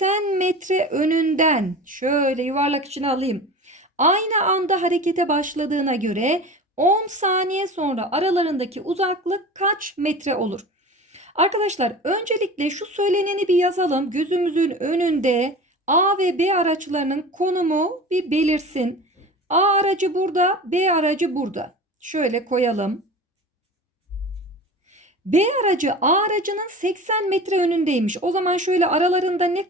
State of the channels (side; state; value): both; normal; correlation 0.35